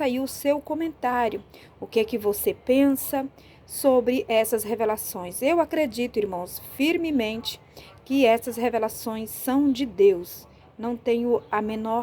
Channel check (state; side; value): identical; both; correlation 1.00